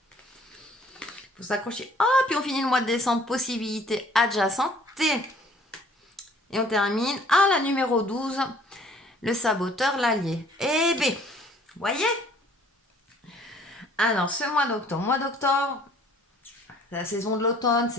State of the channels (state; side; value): normal; both; correlation 0.56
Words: Faut s'accrocher. Ah, puis on finit le mois de décembre, possibilité adjacente. Et on termine à la numéro 12, le saboteur, l'allié. Eh bien, voyez? Alors, ce mois d'octobre, c'est la saison de l'automne,